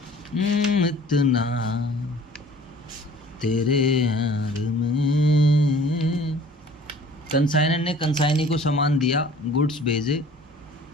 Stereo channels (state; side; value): normal; both; correlation 0.50